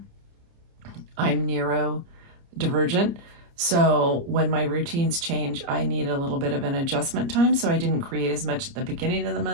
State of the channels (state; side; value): late; left; 29 ms